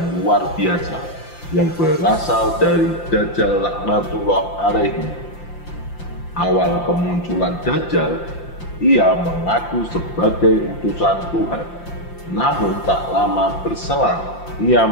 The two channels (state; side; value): late; right; 5.8 ms